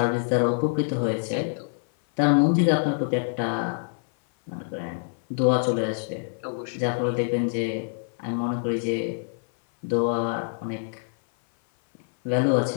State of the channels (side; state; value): right; silent; 56 dB below the other